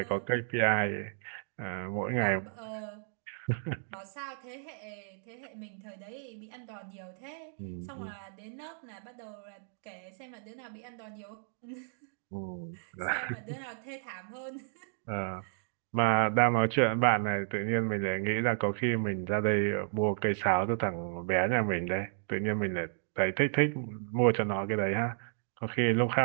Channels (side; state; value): left; silent; digital silence